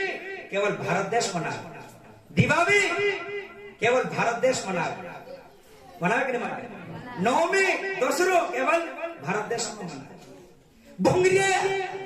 केवल भारत देश मना दिवाली केवल भारत देश मनावे मनावे कि नहीं मनावे। नवमी दसरो केवल भारत देश में मनावे। भोंगरिया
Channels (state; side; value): identical; both; correlation 1.00